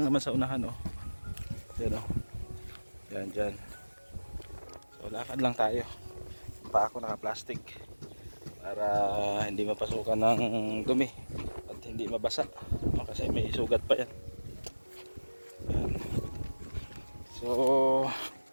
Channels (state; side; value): inverted; both; correlation -1.00